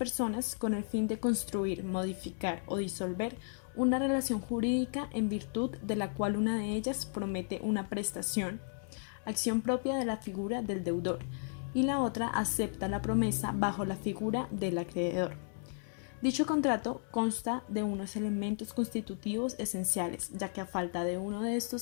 con el fin de construir, modificar o disolver una relación jurídica en virtud de la cual una de ellas promete una prestación, acción propia de la figura del deudor, y la otra acepta la promesa bajo la figura del acreedor. Dicho contrato consta de unos elementos constitutivos esenciales, ya que a falta de uno de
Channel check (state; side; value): silent; right; digital silence